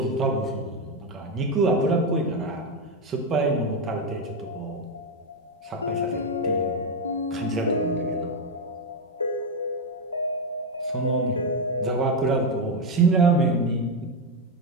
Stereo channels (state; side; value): normal; both; correlation 0.06